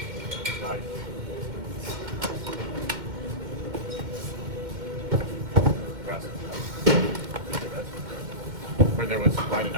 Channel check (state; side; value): late; left; 2.1 ms